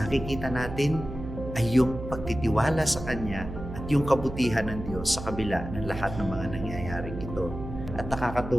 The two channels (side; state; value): right; noise; hum, 9 dB below the sound